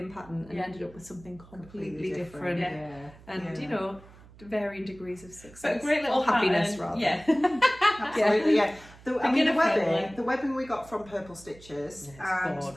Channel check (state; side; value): noise; right; hum, 22 dB below the sound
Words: pattern and Yeah. ended up with something completely different. Yeah. And Yeah. you know, varying degrees of success. But a great little or happiness pattern. rather. Yeah. Absolutely, yeah. Beginner friendly. The webbing we got from Purple Stitches Yeah, and it's the